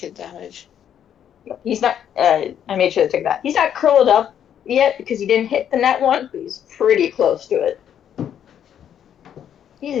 damage. He's not. I made sure to take that. He's not curled up yet because he didn't hit the net one, but he's pretty close to it.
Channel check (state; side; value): quieter; right; 9.4 dB